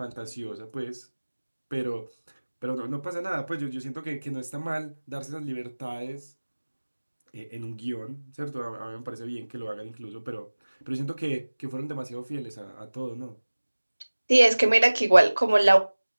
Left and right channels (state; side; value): inverted; both; correlation -1.00